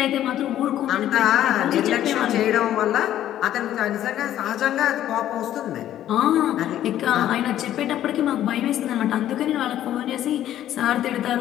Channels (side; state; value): right; quieter; 12.0 dB